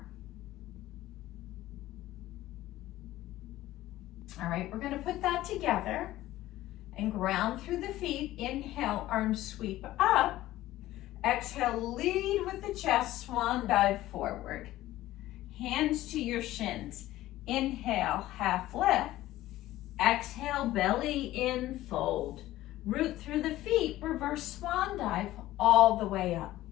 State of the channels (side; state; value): right; quieter; 15.5 dB